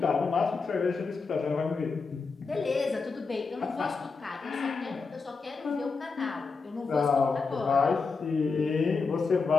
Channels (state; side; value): quieter; right; 4.6 dB